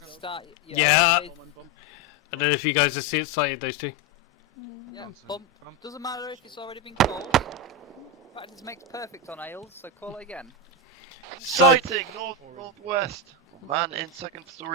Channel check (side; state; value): both; normal; correlation 0.11